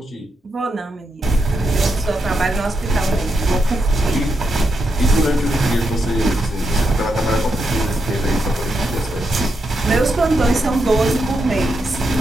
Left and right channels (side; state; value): both; normal; correlation 0.83